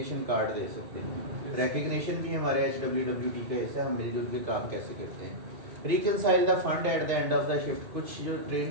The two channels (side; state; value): left; late; 2.1 ms